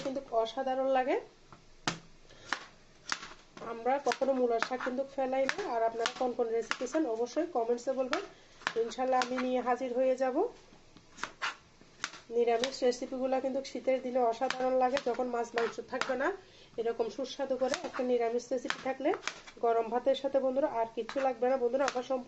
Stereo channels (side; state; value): both; identical; correlation 1.00